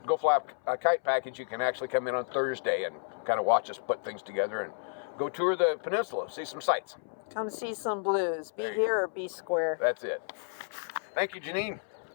Go Fly a Kite package, you can actually come in on Thursday and kind of watch us put things together and go tour the peninsula, see some sights. Come see some blues. Be here or be square. That's it. Thank you, Janine.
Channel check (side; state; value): right; silent; 57 dB below the other